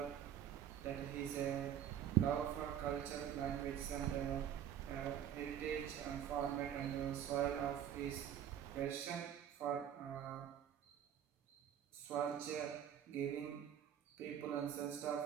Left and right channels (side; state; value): left; quieter; 9.9 dB